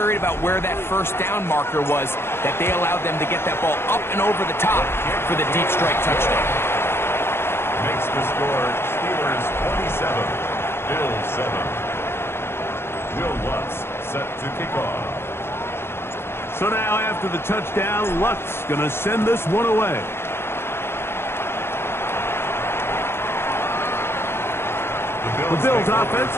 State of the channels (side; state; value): right; late; 0.12 ms